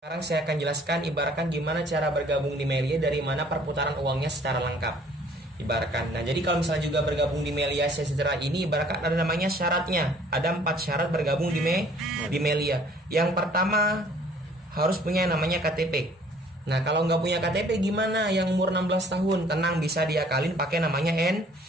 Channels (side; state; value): both; normal; correlation 0.56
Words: Sekarang saya akan jelaskan ibaratkan gimana cara bergabung di Melia, dari mana perputaran uangnya secara lengkap. Ibaratkan. Nah, jadi kalau misalnya juga bergabung di Melia Sejahtera ini, ibaratkan ada namanya syaratnya. Ada 4 syarat bergabung di Melia. Yang pertama harus punya namanya KTP. Nah, kalau nggak punya KTP gimana? Yang umur 16 tahun, tenang, bisa diakalin pakai namanya